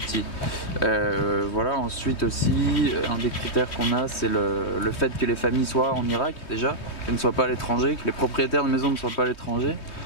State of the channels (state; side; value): late; right; 3.2 ms